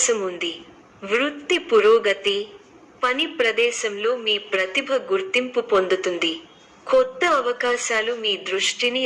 ఉంది. వృత్తి పురోగతి. పని ప్రదేశంలో మీ ప్రతిభ గుర్తింపు పొందుతుంది. కొత్త అవకాశాలు మీ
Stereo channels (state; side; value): identical; both; correlation 1.00